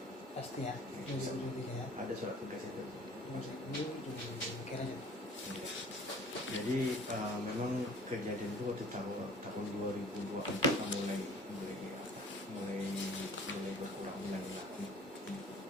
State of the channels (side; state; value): both; normal; correlation 0.49